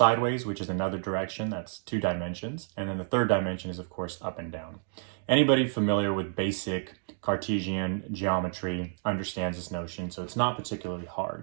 which is another direction. That's two dimensions. And then the third dimension is, of course, up and down. Anybody familiar with basic Cartesian geometry understands this notion, so it's not particularly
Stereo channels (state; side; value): silent; left; digital silence